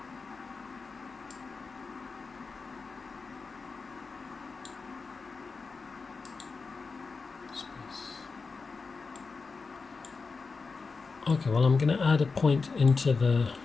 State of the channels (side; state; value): right; quieter; 4.5 dB